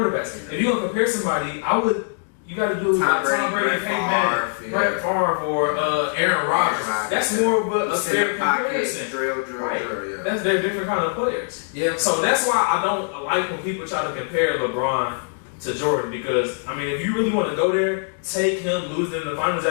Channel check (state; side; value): silent; right; digital silence